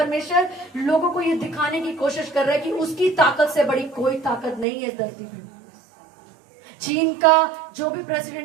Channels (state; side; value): drops out; left; at 4.7 s